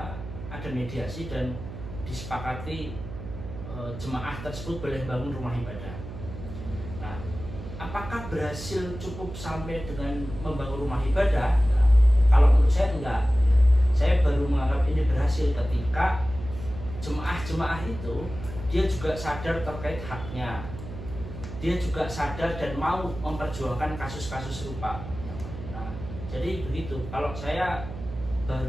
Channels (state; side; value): noise; right; hum, 10 dB below the sound